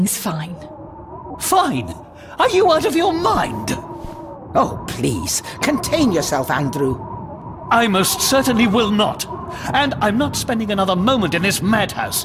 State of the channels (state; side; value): identical; both; correlation 1.00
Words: fine. Fine? Are you out of your mind? Oh, please, contain yourself, Andrew. I most certainly will not. And I'm not spending another moment in this